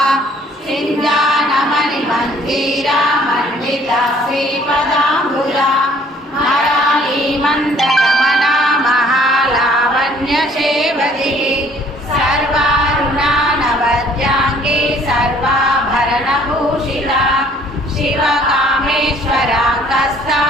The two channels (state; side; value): normal; both; correlation 0.58